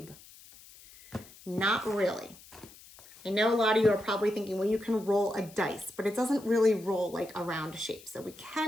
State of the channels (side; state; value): left; noise; hiss, 21 dB below the sound